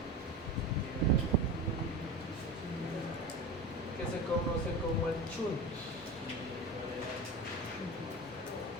Que se conoce como el chunt.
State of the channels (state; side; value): normal; both; correlation 0.28